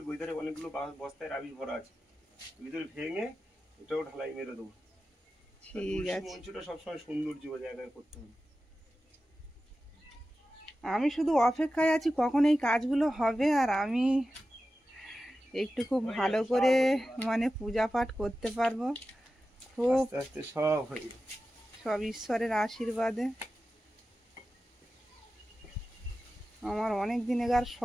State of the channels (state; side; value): normal; both; correlation 0.93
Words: এধারে অনেকগুলো বস্তায় রাবিশ ভরা আছে, ভিতরে ভেঙে এটাও ঢালাই মেরে দেবো। ঠিক আছে, মঞ্চটা সবসময় সৌন্দর্য জায়গায় করতে হবে। আমি শুধু অপেক্ষায় আছি কখন এই কাজগুলো হবে, আর আমি একটু খুব ভালো করে মানে পূজা পাঠ করতে পারবো। খুব আস্তে আস্তে সব হয়ে যাবে, সব ঈশ্বরের আশীর্বাদে। আমার অনেক দিনেকার